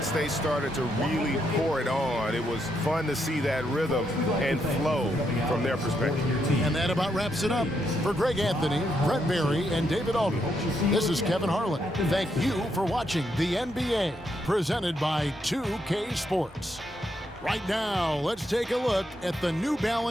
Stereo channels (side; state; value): both; normal; correlation 0.79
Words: they started to really pour it on, it was fun to see that rhythm and flow from their perspective. And that about wraps it up. For Greg Anthony, Brett Barry, and David Aldridge, this is Kevin Harlan. Thank you for watching the NBA, presented by 2K Sports. Right now, let's take a look at the New